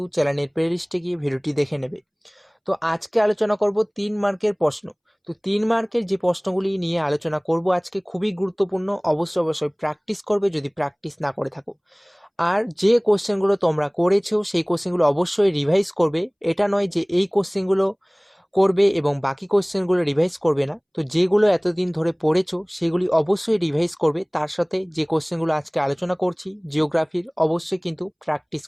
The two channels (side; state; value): both; identical; correlation 1.00